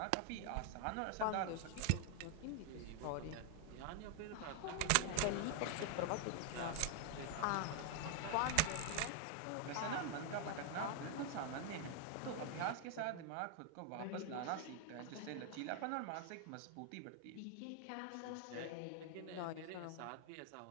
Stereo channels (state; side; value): different; both; correlation 0.00